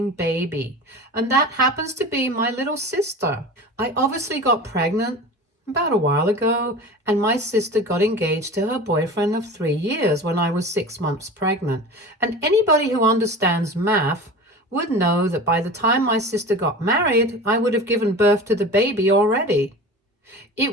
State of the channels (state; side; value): normal; both; correlation 0.34